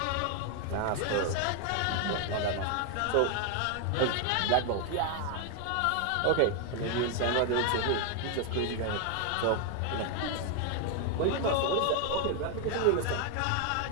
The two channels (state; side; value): different; both; correlation 0.01